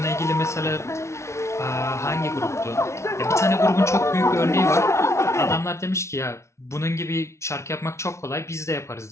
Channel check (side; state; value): right; late; 0.13 ms